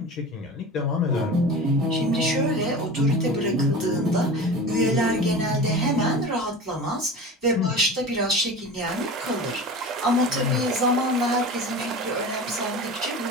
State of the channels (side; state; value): both; normal; correlation 0.33